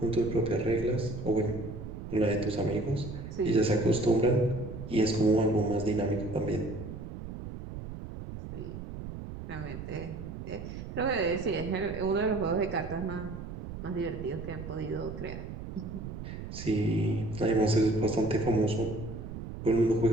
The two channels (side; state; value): right; noise; rumble, 9 dB below the sound